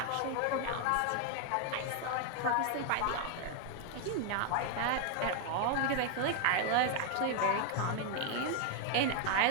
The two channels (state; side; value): different; both; correlation 0.00